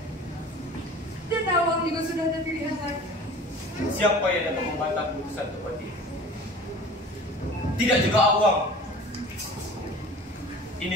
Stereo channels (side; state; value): both; normal; correlation 0.42